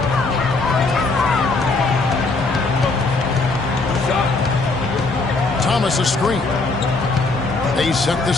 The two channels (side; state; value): right; quieter; 3.6 dB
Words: Thomas a screen. They set the